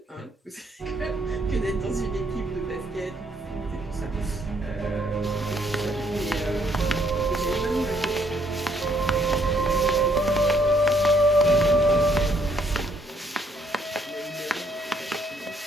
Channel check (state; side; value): normal; both; correlation 0.68